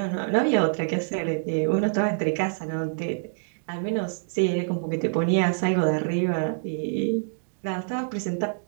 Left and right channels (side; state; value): left; silent; digital silence